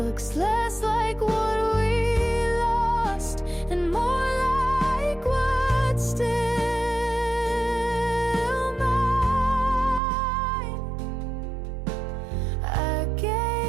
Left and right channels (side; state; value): left; drops out; at 10.0 s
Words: less like what we lost and more like what's still mine. I